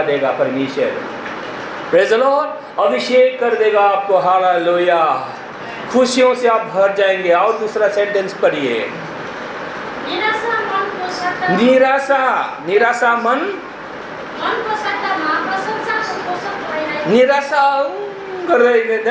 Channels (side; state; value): both; identical; correlation 1.00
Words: देगा परमेश्वर। Praise the Lord. अभिषेक कर देगा आपको। हालेलुया। खुशियों से आप भर जाएंगे। और दूसरा सेंटेंस पढ़िए। निराशा मनको सट्टामा, निराशा मनको सट्टामा प्रशंसाको पोषक भइरहेको। निराशा कर रहे,